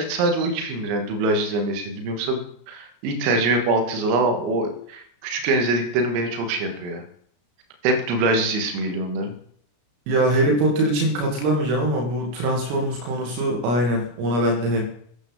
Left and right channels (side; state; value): left; late; 33 ms